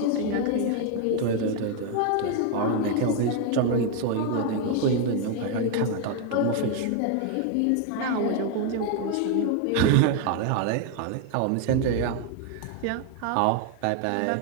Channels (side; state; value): both; different; correlation 0.01